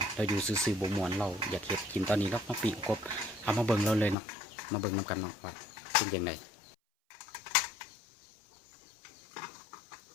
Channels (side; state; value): right; drops out; at 4.2 s